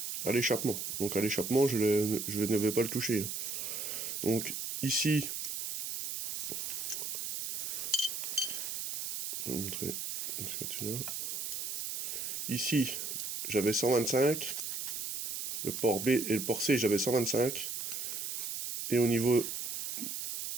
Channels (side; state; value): right; noise; hiss, 4 dB below the sound